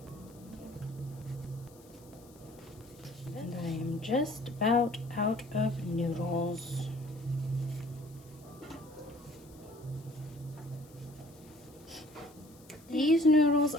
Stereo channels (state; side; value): noise; left; hiss, 25 dB below the sound